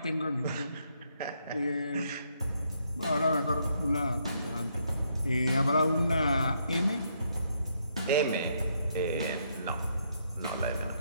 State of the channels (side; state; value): both; inverted; correlation -0.74